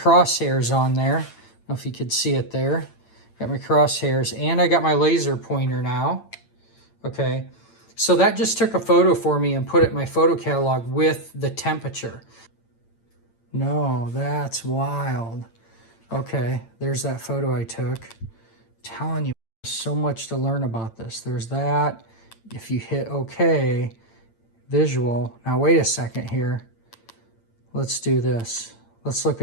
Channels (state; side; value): late; right; 8.9 ms